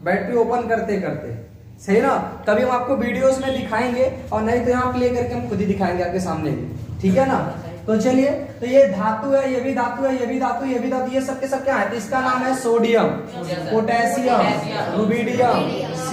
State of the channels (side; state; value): both; identical; correlation 1.00